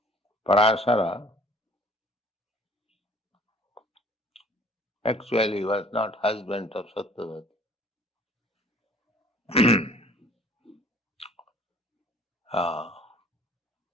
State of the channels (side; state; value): both; normal; correlation 0.53